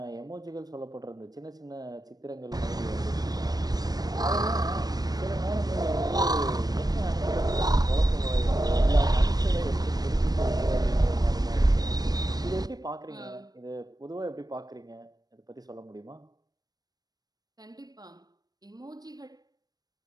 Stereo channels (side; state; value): left; late; 0.19 ms